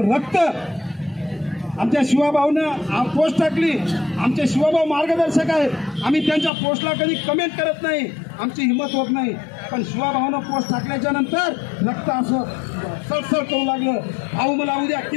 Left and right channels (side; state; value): right; drops out; at 6.5 s